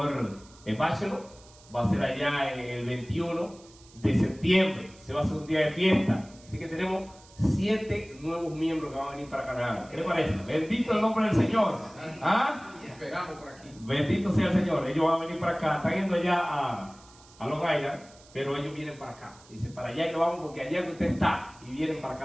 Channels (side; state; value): right; noise; hiss, 24 dB below the sound